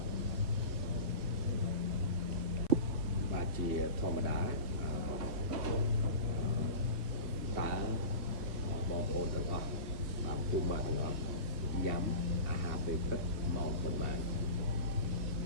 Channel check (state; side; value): late; left; 2.5 ms